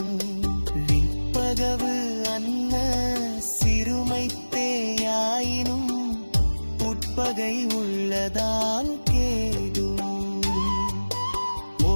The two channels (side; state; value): both; inverted; correlation -1.00